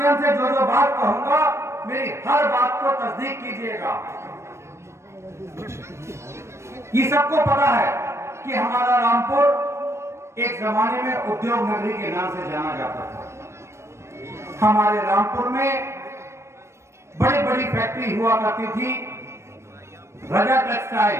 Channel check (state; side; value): late; left; 0.13 ms